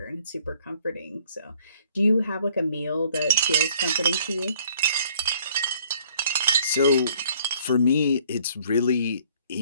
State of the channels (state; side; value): inverted; both; correlation -0.60